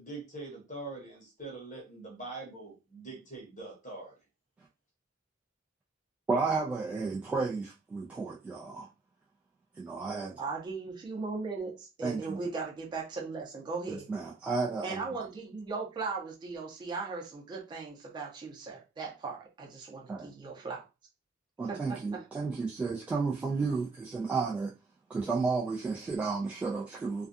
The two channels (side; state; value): left; quieter; 3.8 dB